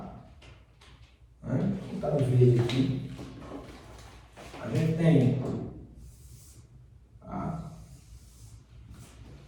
Vou botar de verde aqui. A gente tem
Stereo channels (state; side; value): identical; both; correlation 1.00